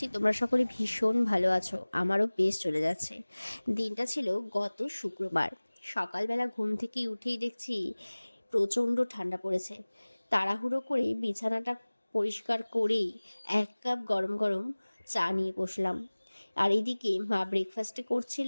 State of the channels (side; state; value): both; inverted; correlation -1.00